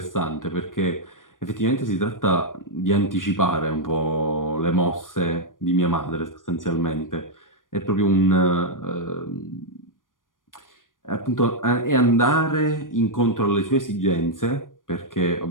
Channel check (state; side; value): late; right; 0.89 ms